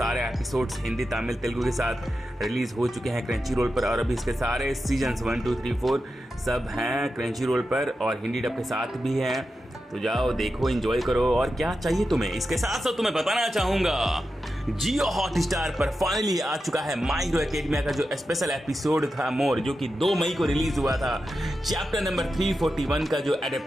एपिसोड्स हिंदी, तमिल, तेलुगु के साथ रिलीज़ हो चुके हैं क्रंची रोल पर। और अभी इसके सारे सीजन्स 1, 2, 3, 4 सब हैं क्रंची रोल पर और हिंदी डब के साथ भी हैं। तो जाओ देखो, एंजॉय करो। और क्या चाहिए तुम्हें, इसके साथ साथ तुम्हें बताना चाहूँगा, जियो हॉटस्टार पर फाइनली आ चुका है माय हीरो एकेडमिया का जो स्पेशल एपिसोड था मोर, जो कि 2 मई को रिलीज हुआ था। चैप्टर नंबर 341 का जो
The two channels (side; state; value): both; normal; correlation 0.90